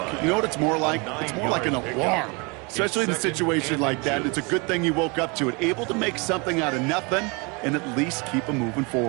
you know what it's more like? It's more like an alarm, especially in a situation like that. It's a good thing you woke up to it, able to make something out of nothing and at least keep them moving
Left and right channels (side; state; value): left; quieter; 29.9 dB